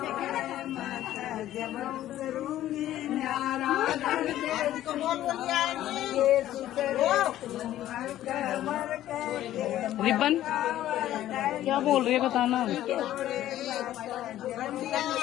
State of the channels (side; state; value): right; quieter; 13.2 dB